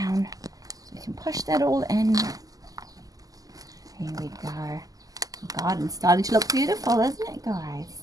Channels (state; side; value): late; left; 0.17 ms